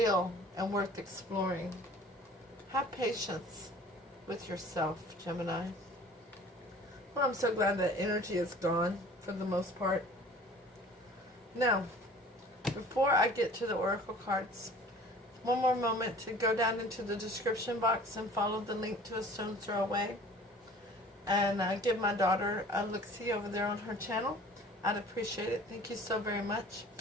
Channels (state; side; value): normal; both; correlation 0.47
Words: and worth exploring. Have patience with yourself, Gemini. Well, I'm so glad that energy is gone for the most part. Now, before I get to the oracle cards, one more moment to go down into the description box and follow the link to AStonesThrowAway. And give my daughter a look-see over there on her channel. I'd appreciate it. Thank you so very much.